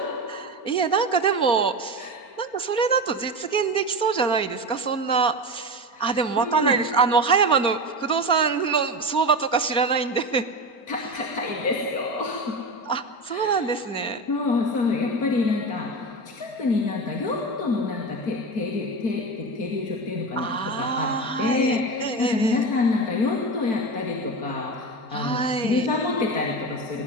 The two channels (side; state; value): right; late; 4.3 ms